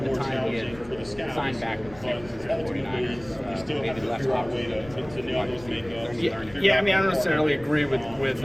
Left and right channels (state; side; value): noise; left; rumble, 19 dB below the sound